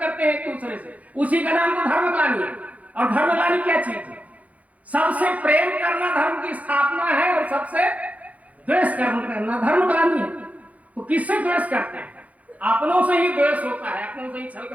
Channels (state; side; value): late; left; 0.070 ms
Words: हैं एक दूसरे से, उसी का नाम तो धर्मग्लानि है। और धर्मग्लानि क्या चीज है? सबसे प्रेम करना धर्म की स्थापना है और सबसे द्वेष करना धर्मग्लानि है। तो किससे द्वेष करते हैं? अपनों से ही द्वेष होता है, अपनों से ही छल